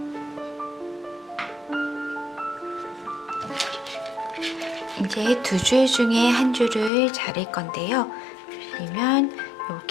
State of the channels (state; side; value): drops out; right; at 6.9 s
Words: 이제 2줄 중에 한 줄을 자를 건데요. 보시면